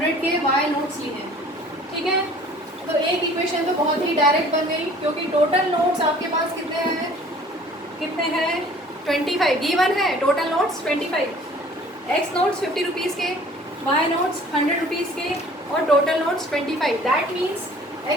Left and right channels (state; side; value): normal; both; correlation 0.51